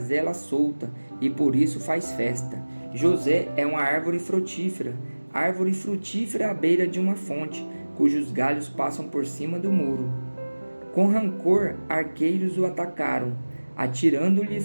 solta, e por isso faz festa. José é uma árvore frutífera à beira de uma fonte, cujos galhos passam por cima do muro. Com rancor, arqueiros o atacaram, atirando-lhe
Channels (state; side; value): inverted; both; correlation -1.00